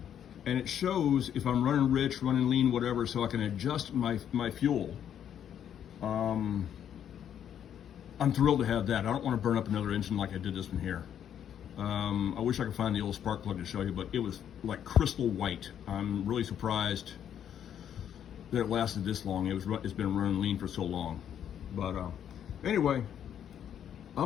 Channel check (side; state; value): right; quieter; 9.4 dB